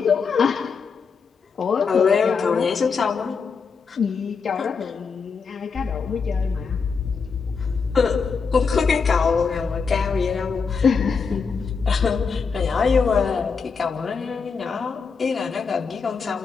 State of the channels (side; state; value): right; quieter; 5.4 dB